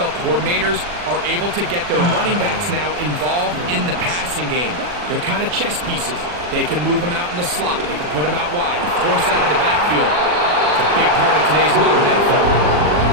coordinators are able to get their running backs now involved in the passing game. They're kind of chess pieces. They can move them out in the slot. They can put them out wide, of course, out of the backfield. It's a big part of today's modern NFL.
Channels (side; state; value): left; late; 40 ms